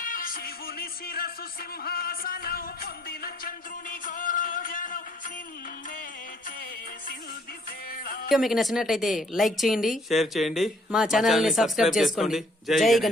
శివుని శిరసు సింహాసనం పొందిన చంద్రుని గౌరవజనం నిన్నే చేసింది వేళ. మీకు నచ్చినట్లయితే లైక్ చేయండి, షేర్ చేయండి, మా ఛానల్ ని సబ్స్క్రైబ్ చేసుకోండి. జై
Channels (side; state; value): both; normal; correlation 0.63